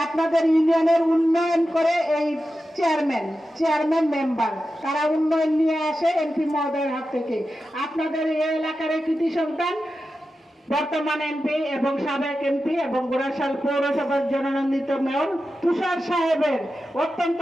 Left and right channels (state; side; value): normal; both; correlation 0.91